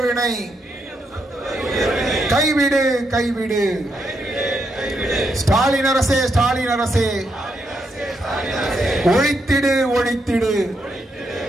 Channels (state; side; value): normal; both; correlation 0.80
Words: கைவிடு கைவிடு. ஸ்டாலின் அரசே ஸ்டாலின் அரசே ஒழித்திடு ஒழித்திடு